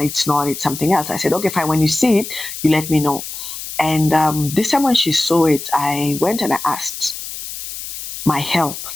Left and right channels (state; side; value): noise; left; hiss, 9 dB below the sound